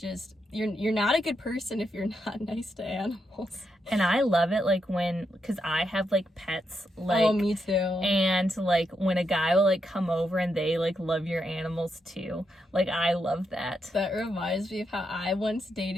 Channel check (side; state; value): both; normal; correlation 0.83